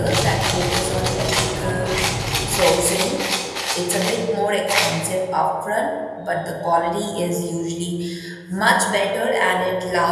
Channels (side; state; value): both; identical; correlation 1.00